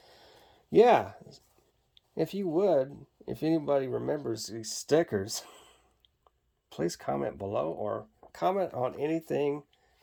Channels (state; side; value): identical; both; correlation 1.00